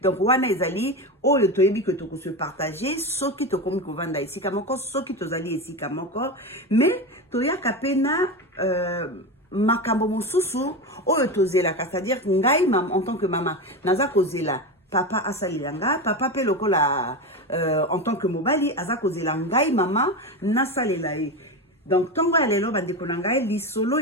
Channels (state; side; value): normal; both; correlation 0.19